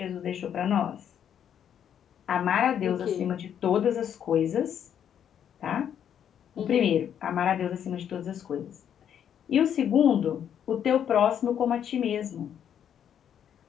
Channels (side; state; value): right; quieter; 9.1 dB